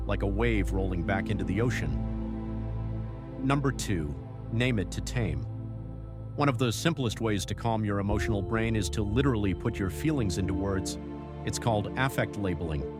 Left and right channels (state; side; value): identical; both; correlation 1.00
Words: like a wave rolling back into the ocean. Number 2, name it to tame. One of the simplest ways to calm your emotional brain is to literally put your feelings into words. It's called affect labeling.